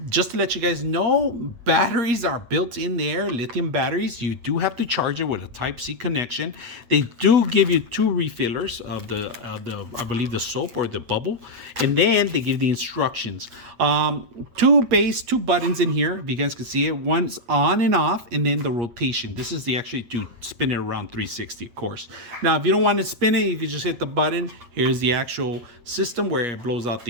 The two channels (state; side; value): late; left; 8.5 ms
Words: just to let you guys know, batteries are built in there, lithium batteries. You do have to charge it with a Type-C connection. They do give you 2 refillers of the I believe the soap or the bubble, and then they give the instructions. 2 buttons in here, if you guys can see it. One's on and off, and then the rotation. This is the actually to spin it around 360, of course. Now, if you don't want to spin it, you can just hit the button. Here's the actual system where it blows out